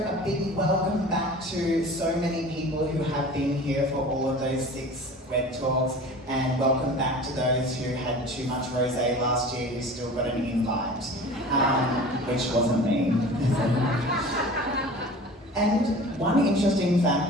big welcome back to so many people who have been here for all of those 6 Wed Talks, and welcome back to those who had too much rosé last year who still got an invite, which wasn't me. And one interesting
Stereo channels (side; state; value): both; normal; correlation 0.40